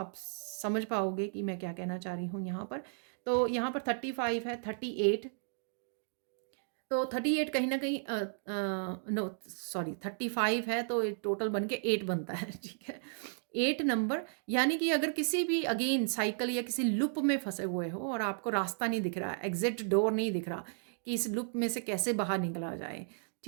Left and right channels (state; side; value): silent; left; digital silence